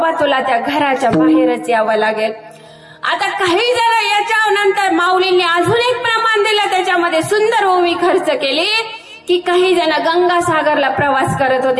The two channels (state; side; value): identical; both; correlation 1.00